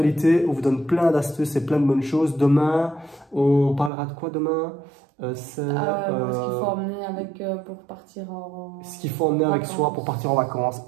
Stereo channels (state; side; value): drops out; left; at 3.9 s